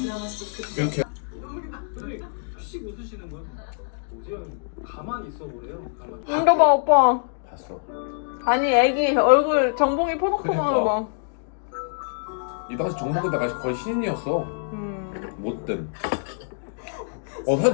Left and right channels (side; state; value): right; silent; digital silence